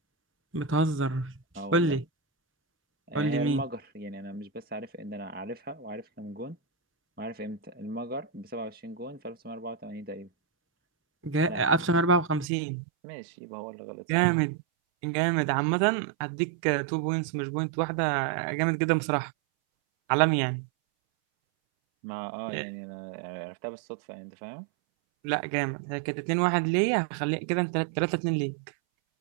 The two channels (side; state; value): left; drops out; at 12.5 s